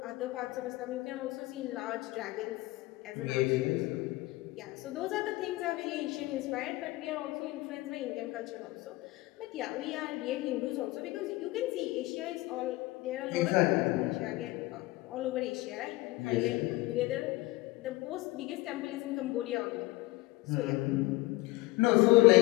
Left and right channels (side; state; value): right; quieter; 20.3 dB